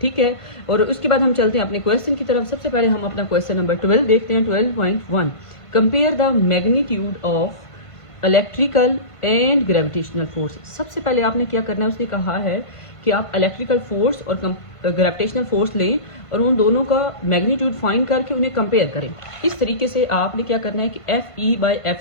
ठीक है, और उसके बाद हम चलते हैं अपने क्वेश्चन की तरफ। सबसे पहले हम अपना क्वेश्चन नंबर 12 देखते हैं। 12.1, compare the magnitude of electrical and gravitational force. सबसे पहले आपने क्या करना है, उसने कहा है कि आप इलेक्ट्रिकल फोर्स और ग्रेविटेशनल फोर्स लें और उन दोनों का मैग्नीट्यूड फाइंड करके उन्हें कंपेयर करें। इस तरीके से आपने क्या करना है कि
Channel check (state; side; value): late; right; 1.5 ms